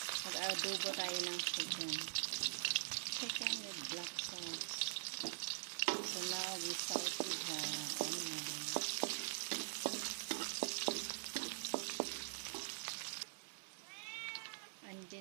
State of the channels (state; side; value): silent; left; digital silence